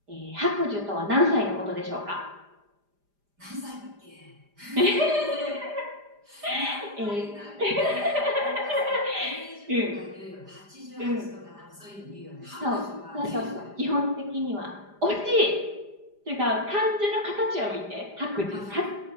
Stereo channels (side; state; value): left; late; 5.0 ms